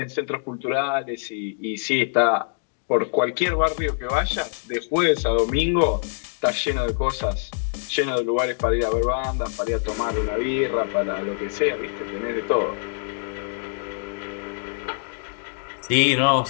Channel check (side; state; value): right; silent; 62 dB below the other